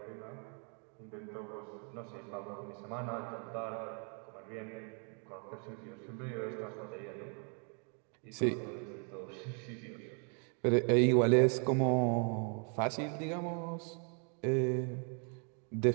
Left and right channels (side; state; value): left; quieter; 39.8 dB